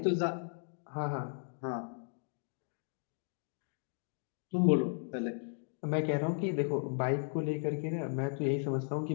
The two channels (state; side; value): silent; right; 54 dB below the other